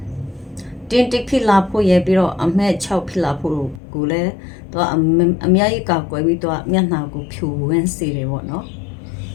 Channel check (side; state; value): right; drops out; at 3.8 s